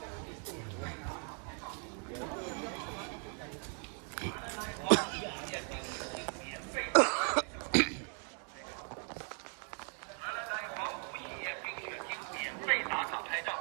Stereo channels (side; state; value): left; quieter; 39.9 dB